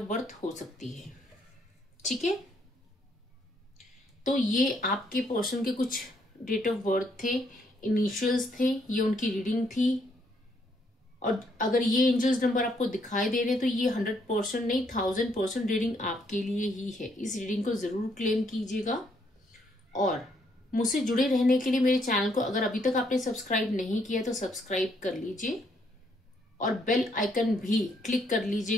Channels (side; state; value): both; normal; correlation 0.71